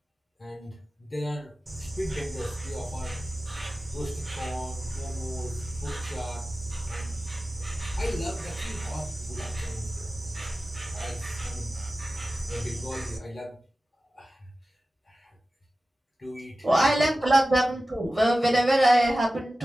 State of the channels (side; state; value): both; normal; correlation 0.95